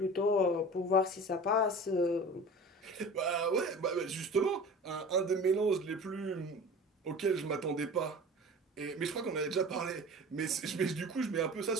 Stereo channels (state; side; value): normal; both; correlation 0.38